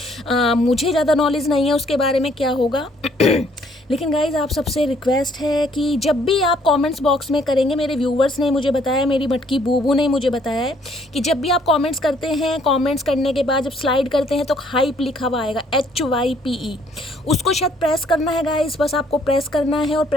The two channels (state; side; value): normal; both; correlation 0.64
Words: मुझे ज़्यादा नॉलेज नहीं है उसके बारे में क्या होगा लेकिन गाइज आप सबसे रिक्वेस्ट है कि जब भी आप कमेंट्स बॉक्स में करेंगे, मेरे व्यूवर्स ने मुझे बताया, मेरी मटकी बूबू ने मुझे बताया है कि जब भी आप कमेंट्स करते हैं, कमेंट्स करने के बाद जब स्लाइड करते हैं तो हाइप लिखा हुआ आएगा HYPE, उसको शायद प्रेस करना है गाइज। बस आपको प्रेस करना है और